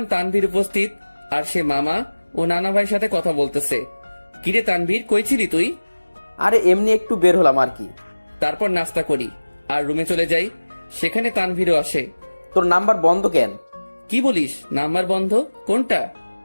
তানভীর উপস্থিত, আর সে মামা ও নানা ভাইয়ের সাথে কথা বলতেছে। কিরে তানভীর, কই ছিলি তুই? আরে এমনি একটু বের হলাম আর কি। তারপর নাস্তা করি আর রুমে চলে যাই। সেখানে তানভীরও আসে। তোর নাম্বার বন্ধ কেন? কি বলিস? নাম্বার বন্ধ? কোনটা?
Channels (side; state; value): both; inverted; correlation -1.00